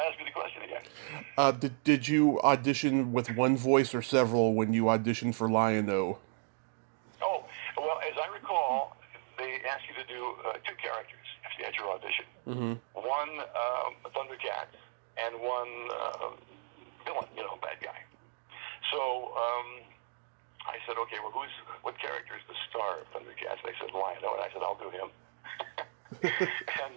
ask me the question again. Did you audition with one voice or several when you auditioned for Lion-O? Oh, well, as I recall, they asked you to do two characters at your audition. Mm-hmm. One Thundercat and one villain, bad guy. So I said, okay, well, what character is the star of Thundercats? They said Lion-O, and I said, I'll do him.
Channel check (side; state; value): left; silent; digital silence